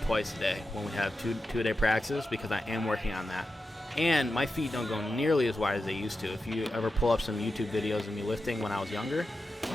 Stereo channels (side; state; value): both; normal; correlation 0.90